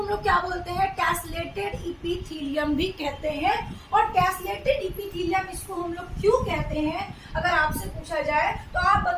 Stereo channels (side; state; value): both; identical; correlation 1.00